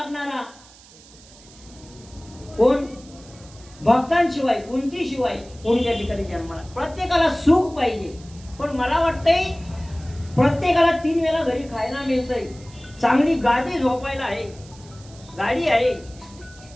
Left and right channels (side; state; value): right; noise; hiss, 23 dB below the sound